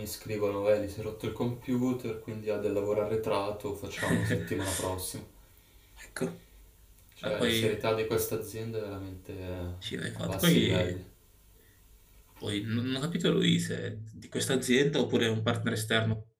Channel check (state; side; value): identical; both; correlation 1.00